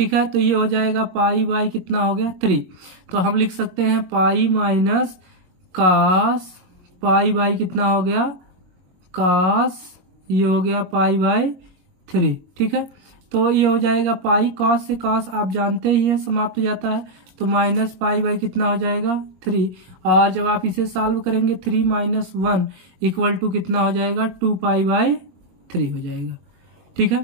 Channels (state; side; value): late; left; 21 ms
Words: है, तो ये हो जाएगा π/ कितना हो गया, 3। तो हम लिख सकते हैं पाई माइनस cos π/ कितना हो गया, cos, ये हो गया π/3। ठीक है, तो ये हो जाएगा पाई, cos से cos आप जानते ही हैं समाप्त हो जाता है, तो -π/ कितना हो जाएगा, 3। और जब आप इसे सॉल्व करेंगे 3 - 1 इक्वल टू कितना हो जाएगा, 2π/3 हो जाएगा। ठीक